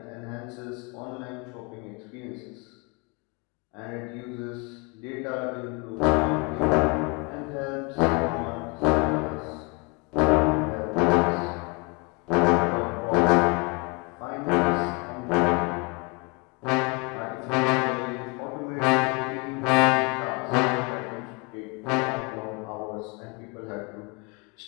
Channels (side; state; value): right; quieter; 29.7 dB